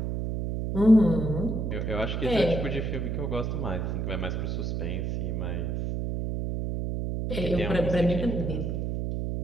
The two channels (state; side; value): noise; right; hum, 2 dB below the sound